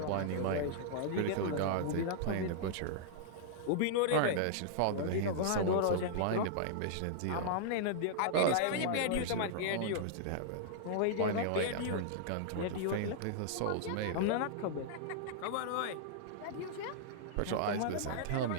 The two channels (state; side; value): different; both; correlation -0.01